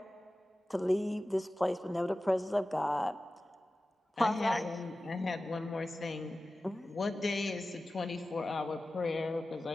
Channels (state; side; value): normal; both; correlation 0.96